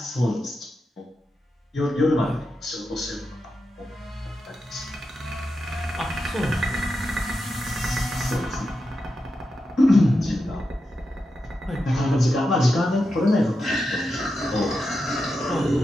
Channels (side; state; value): both; normal; correlation 0.88